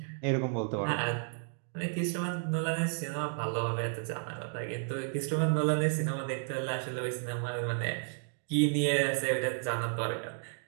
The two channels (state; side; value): silent; left; 56 dB below the other